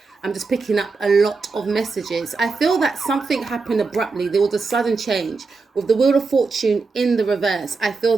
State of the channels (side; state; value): left; quieter; 4.2 dB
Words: I'm just picking up a lot of messages. I feel that something happened abruptly. There was a sudden change. With the Wheel of Fortune in the reverse, I feel